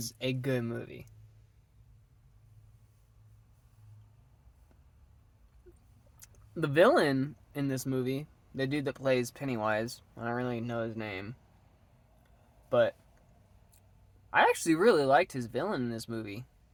a good movie. The villain in this movie, the dude that plays Pennywise, I don't really know his name, but I actually really liked his villain in this movie.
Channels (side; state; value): both; identical; correlation 1.00